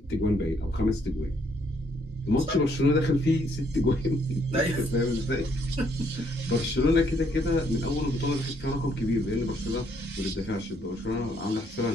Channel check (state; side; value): normal; both; correlation 0.70